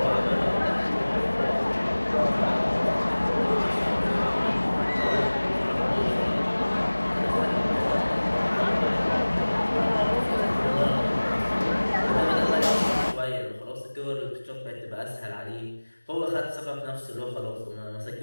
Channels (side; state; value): both; inverted; correlation -1.00